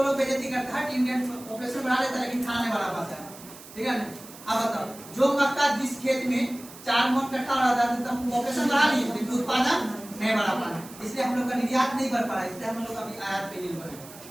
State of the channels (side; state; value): right; noise; hiss, 18 dB below the sound